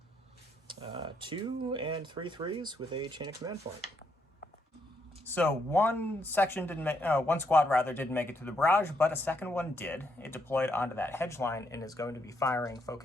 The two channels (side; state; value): both; normal; correlation 0.76